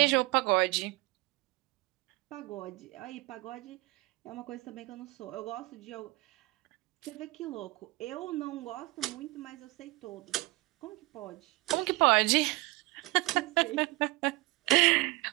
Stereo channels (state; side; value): quieter; left; 22.3 dB